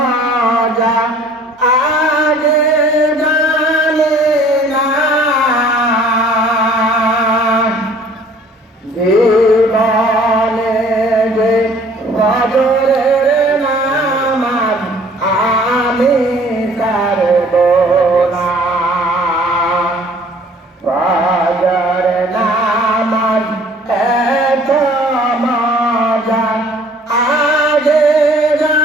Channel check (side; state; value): both; normal; correlation 0.54